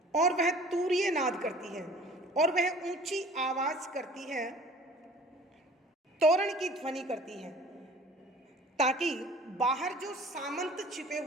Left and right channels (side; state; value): both; normal; correlation 0.48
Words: और वह तूर्य नाद करती है और वह ऊंची आवाज करती है, तोरण की ध्वनि करती है, ताकि बाहर जो सामंत छिपे